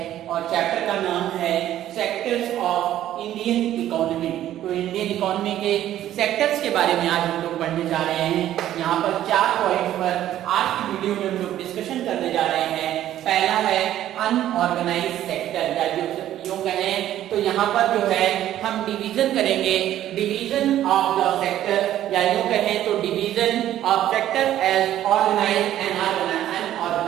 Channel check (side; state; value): left; quieter; 12.4 dB